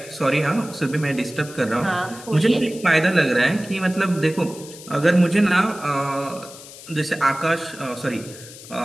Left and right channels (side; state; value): left; noise; hiss, 17 dB below the sound